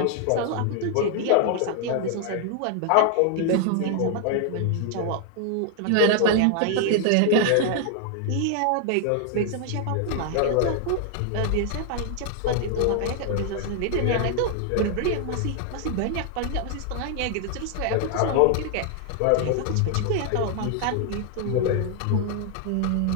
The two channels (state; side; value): different; both; correlation 0.00